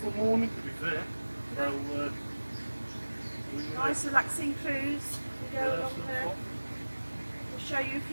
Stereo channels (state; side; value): inverted; both; correlation -1.00